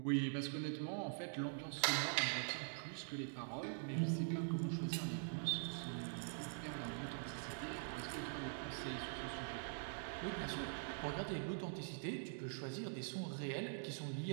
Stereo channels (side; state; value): left; silent; digital silence